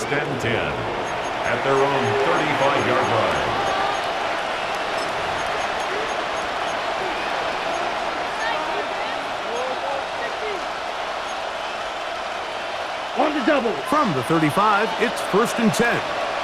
and 10 at their own 35-yard line. On the double. From the 35, it's 1st and 10.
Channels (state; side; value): identical; both; correlation 1.00